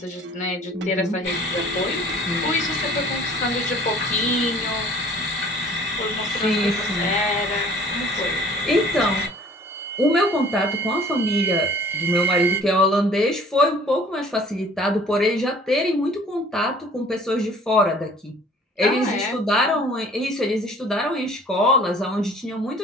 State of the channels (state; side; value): normal; both; correlation 0.51